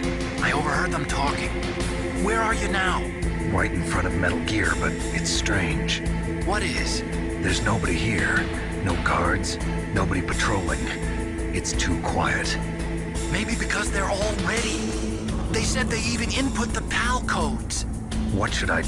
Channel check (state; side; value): identical; both; correlation 1.00